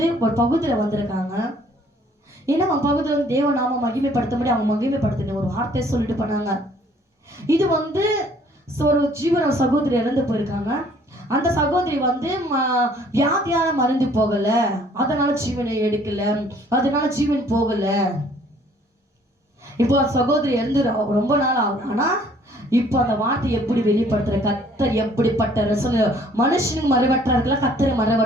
ஒரு பகுதியில வந்திருக்காங்க. ஏன்னா அவன் பகுதியில் தேவநாம மகிமைப்படுத்த அவங்க மகிமைப்படுத்தின ஒரு வார்த்தையை சொல்லிட்டு போனாங்க. இது ஒரு ஜீவன சகோதரி இறந்து போயிருக்காங்க. அந்த சகோதரி வியாதியால மருந்து போகல, அதனால ஜீவனை எடுக்கல, அதனால ஜீவன் போகல. இப்போ சகோதரி இறந்து ரொம்ப நாள் ஆகும். ஆனா இப்போ அந்த வார்த்தை எப்படி வெளிப்படுத்துற, கர்த்தர் எப்படிப்பட்ட மனுஷனுக்கு மறைவற்றார்களா, கர்த்தரை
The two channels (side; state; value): both; normal; correlation 0.59